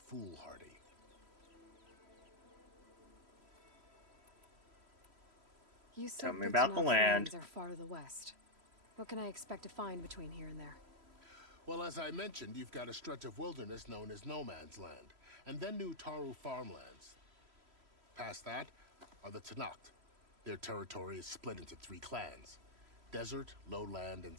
foolhardy. You said Tell me about the land. Are far to the west. What can I expect to find between here and there? Well, as I mentioned, you've got a stretch of wilderness known as No Man's Land, and then New Taru farmlands. Past that are the Tenakth. Their territory is split into 3 clans: Desert, Lowland, and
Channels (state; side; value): late; left; 3.1 ms